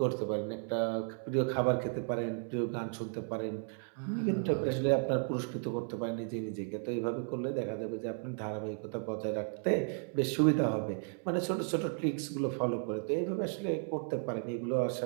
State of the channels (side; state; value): left; silent; 55 dB below the other